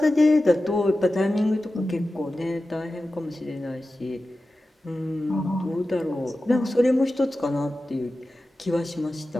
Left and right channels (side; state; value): both; normal; correlation 0.94